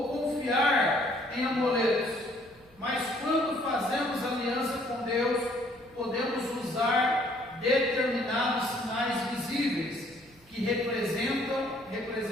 confiar em amuletos, mas quando fazemos aliança com Deus, podemos usar determinados sinais visíveis que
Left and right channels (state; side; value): noise; right; hum, 29 dB below the sound